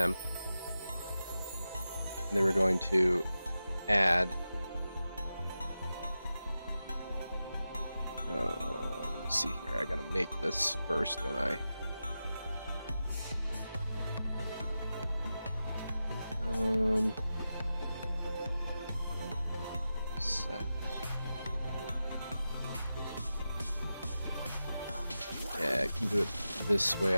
and then we're going to add let me see here, I gotta make this first, don't I? Set. Yeah, I can do it this way,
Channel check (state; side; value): inverted; both; correlation -0.92